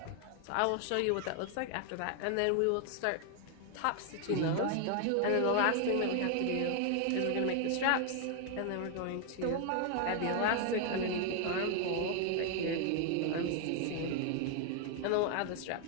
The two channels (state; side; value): different; both; correlation 0.00